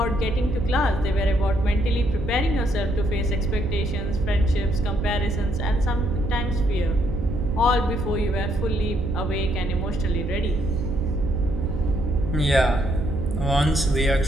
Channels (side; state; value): right; noise; hum, 6 dB below the sound